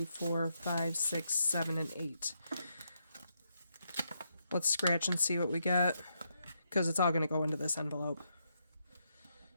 4, 5, 6, 7, and 8. Let's scratch and see what we get, because it's all going to go into this envelope.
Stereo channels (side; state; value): both; inverted; correlation -0.80